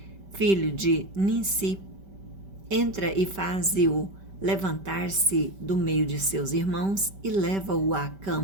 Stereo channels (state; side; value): late; left; 5.1 ms